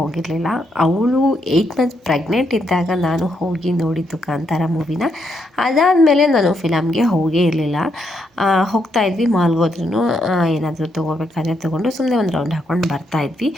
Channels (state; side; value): normal; both; correlation 0.78